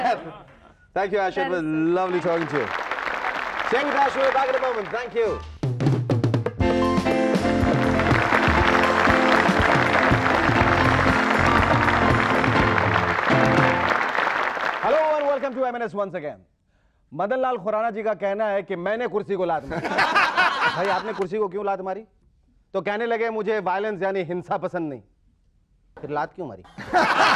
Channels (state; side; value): identical; both; correlation 1.00